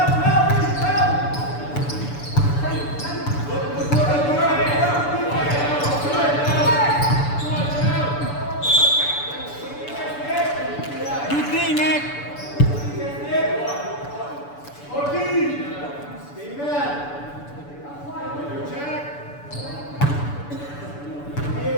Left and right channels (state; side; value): late; right; 6.9 ms